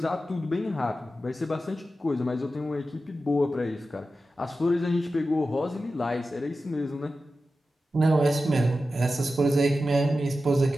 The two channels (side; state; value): both; normal; correlation 0.92